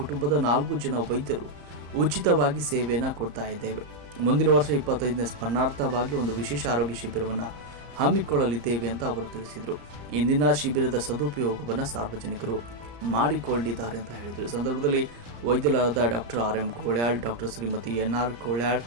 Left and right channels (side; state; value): left; late; 34 ms